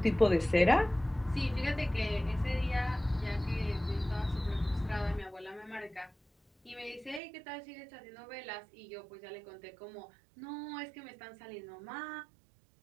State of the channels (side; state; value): left; drops out; at 7.2 s